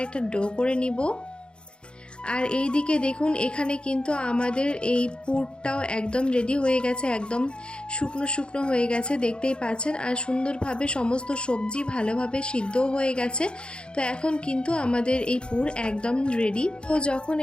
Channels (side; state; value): right; late; 0.053 ms